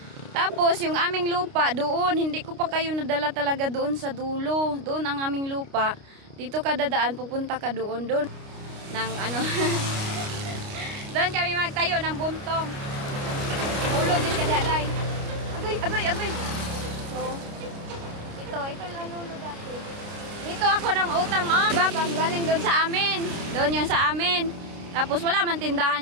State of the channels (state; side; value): late; left; 29 ms